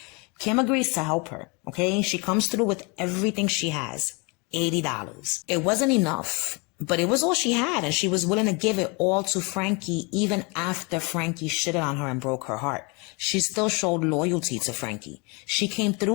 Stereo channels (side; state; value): right; quieter; 30.1 dB